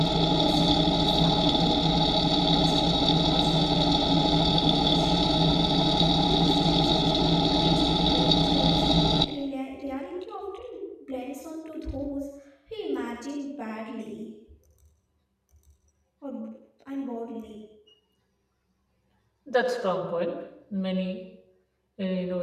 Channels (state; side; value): identical; both; correlation 1.00